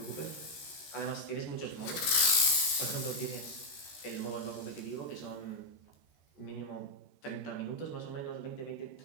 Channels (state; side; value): late; right; 13 ms